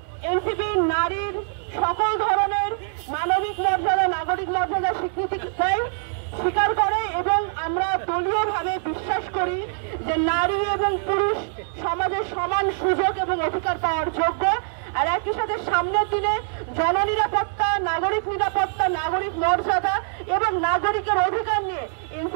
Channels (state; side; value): silent; left; 60 dB below the other